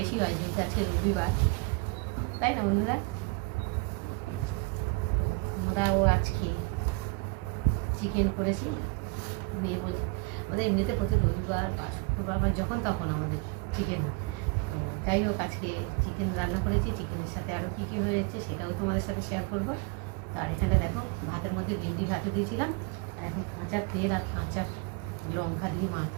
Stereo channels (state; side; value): quieter; left; 27.6 dB